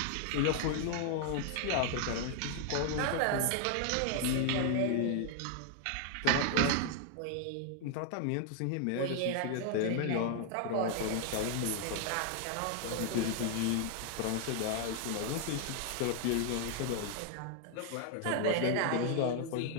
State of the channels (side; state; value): both; different; correlation 0.00